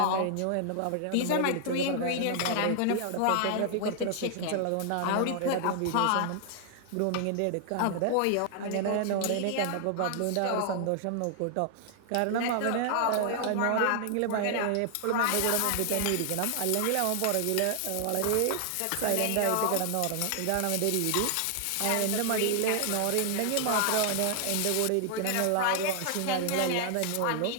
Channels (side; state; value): both; different; correlation 0.00